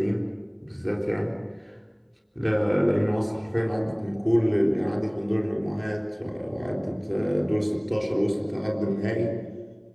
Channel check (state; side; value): identical; both; correlation 1.00